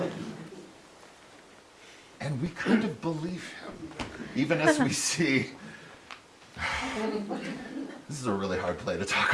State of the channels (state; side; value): identical; both; correlation 1.00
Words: And we kind of believe him, even as we see. This is a really hard play to talk